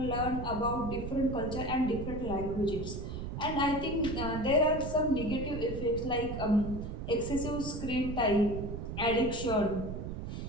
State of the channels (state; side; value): noise; right; rumble, 6 dB below the sound